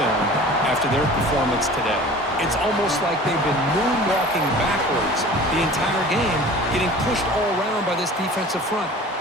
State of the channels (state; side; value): normal; both; correlation 0.42